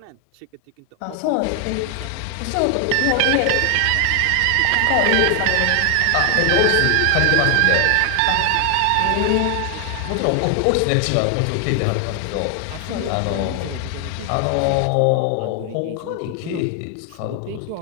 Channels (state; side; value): different; both; correlation 0.00